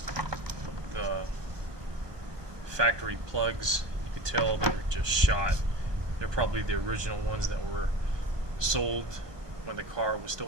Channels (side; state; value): left; late; 1.2 ms